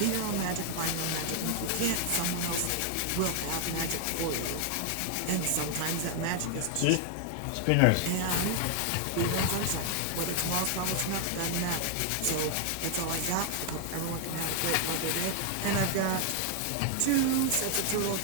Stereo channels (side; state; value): both; different; correlation 0.00